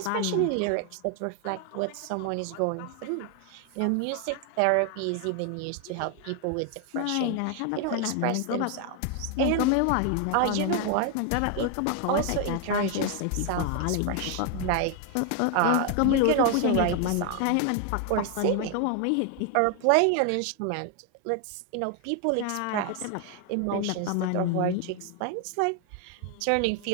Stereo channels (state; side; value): different; both; correlation 0.00